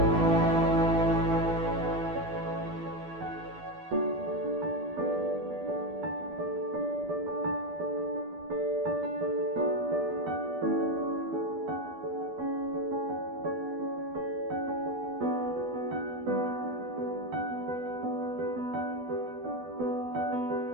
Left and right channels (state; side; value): late; left; 12 ms